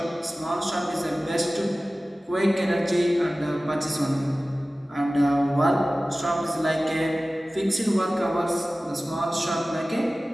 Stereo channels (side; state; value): both; normal; correlation 0.97